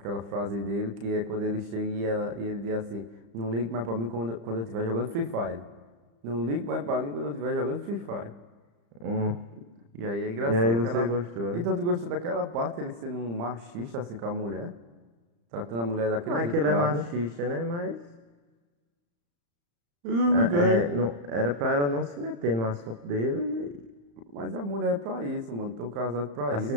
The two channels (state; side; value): late; left; 35 ms